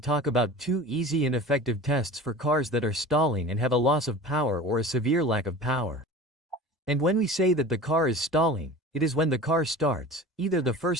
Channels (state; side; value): normal; both; correlation 0.38